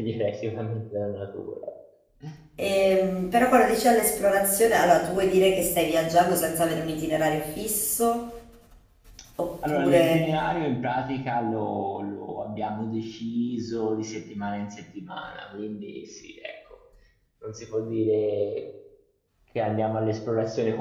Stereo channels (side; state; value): both; identical; correlation 1.00